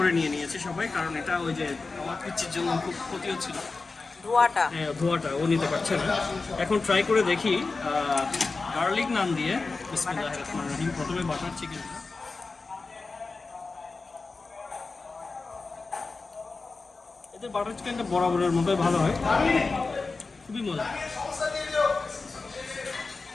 নিয়েছি সবাই, কারণ এটা ওই যে আমার পিচ্ছির জন্য খুব ক্ষতি হচ্ছিল, ধোয়াটা। হ্যাঁ ধোয়াটা ও নিতে পারছে না। এখন ট্রাই করে দেখি গার্লিক নান দিয়ে। বিসমিল্লাহির রহমানির রহিম। প্রথমে বাটার চিকেন, এদের বাটার চিকেনটা বরাবরের মতোই ভালো হয়, খুবই মজা।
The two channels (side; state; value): right; quieter; 3.9 dB